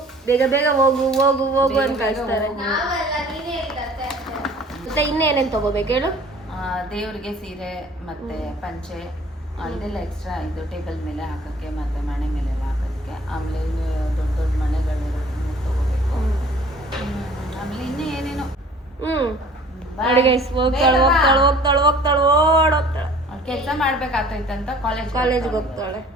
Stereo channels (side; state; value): both; normal; correlation 0.50